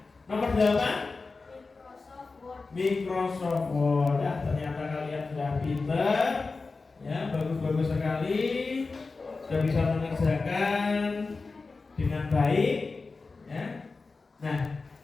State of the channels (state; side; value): quieter; right; 4.0 dB